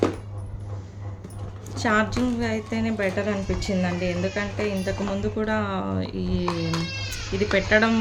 ఛార్జింగ్ అయితేనే బెటర్ అనిపించిందండి. ఎందుకంటే ఇంతకుముందు కూడా ఇది పెట్టడం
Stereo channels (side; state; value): both; identical; correlation 1.00